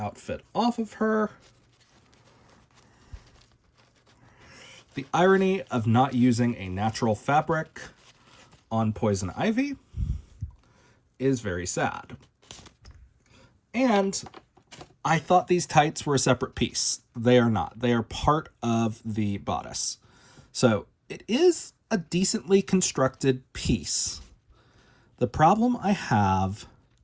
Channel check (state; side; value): identical; both; correlation 1.00